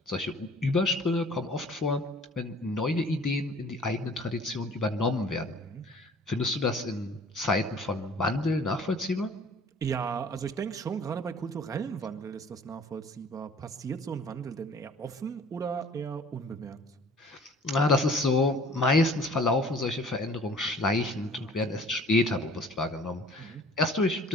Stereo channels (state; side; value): normal; both; correlation 0.51